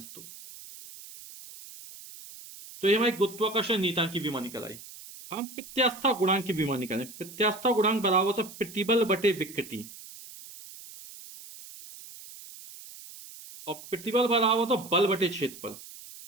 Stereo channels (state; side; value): noise; right; hiss, 16 dB below the sound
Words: तो ये हमारी गुरुत्वाकर्षण नियतांक की विमा निकल आई। हम प्रत्यास्था गुणांक की विमा निकालें। प्रत्यास्था गुणांक बराबर होता है प्रतिबल बटे विकृति, और प्रतिबल बराबर होता है बल बटे क्षेत्रफल